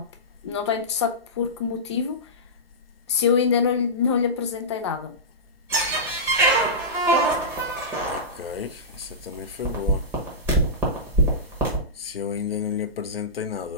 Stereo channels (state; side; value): normal; both; correlation -0.16